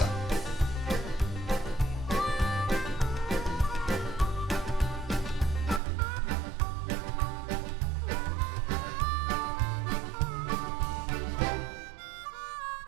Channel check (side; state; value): left; drops out; at 5.8 s